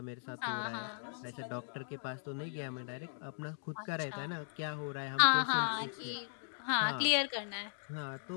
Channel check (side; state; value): right; silent; digital silence